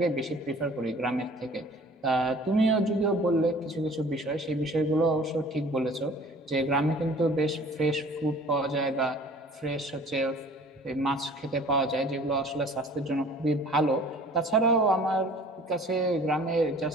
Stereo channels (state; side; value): normal; both; correlation 0.49